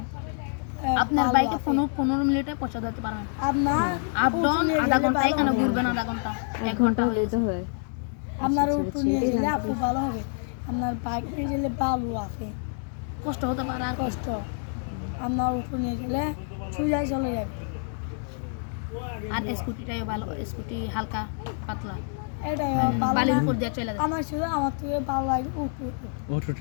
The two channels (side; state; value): right; silent; 60 dB below the other